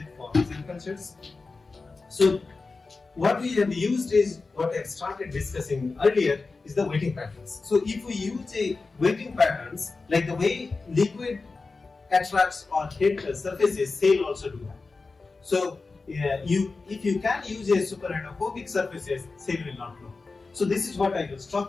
for cell cultures. So what we have used is what I started discussing earlier is the weighting patterns. So if we use a weighting patterns like the way liquid attracts or hit surfaces, cell also do that. So if you can use a super hydrophobic surfaces, cell will not grow. So this is what I was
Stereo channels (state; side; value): quieter; right; 4.0 dB